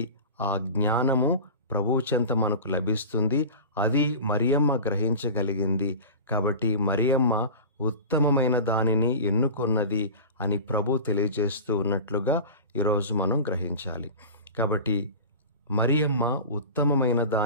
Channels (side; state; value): both; inverted; correlation -0.33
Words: ఆ జ్ఞానము ప్రభు చెంత మనకు లభిస్తుంది. అది మరియమ్మ గ్రహించగలిగింది. కాబట్టి మరియమ్మ ఉత్తమమైన దానిని ఎన్నుకొన్నది అని ప్రభు తెలియజేస్తూ ఉన్నట్లుగా ఈరోజు మనం గ్రహించాలి. కాబట్టి మరియమ్మ ఉత్తమమైన